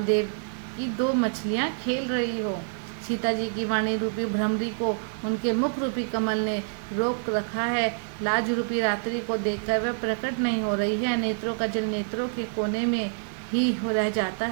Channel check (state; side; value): silent; left; digital silence